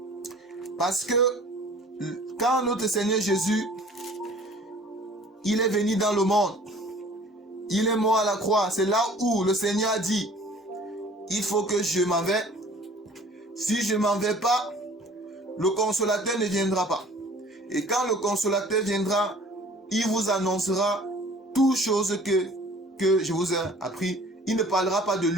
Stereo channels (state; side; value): normal; both; correlation 0.50